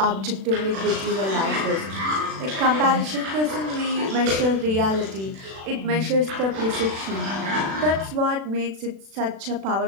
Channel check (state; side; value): late; left; 36 ms